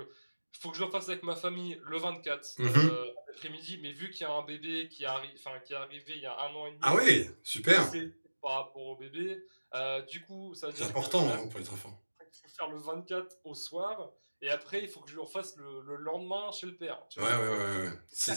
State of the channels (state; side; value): inverted; both; correlation -1.00